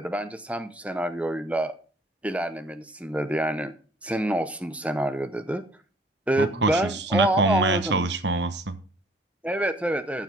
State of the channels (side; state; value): both; normal; correlation 0.58